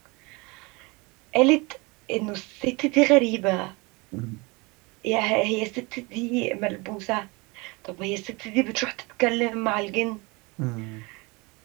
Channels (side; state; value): left; quieter; 26.5 dB